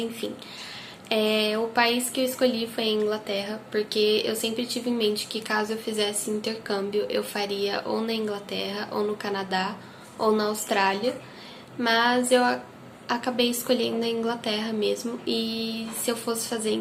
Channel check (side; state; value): both; identical; correlation 1.00